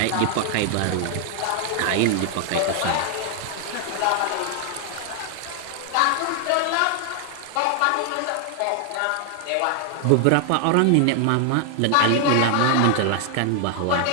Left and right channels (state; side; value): different; both; correlation 0.00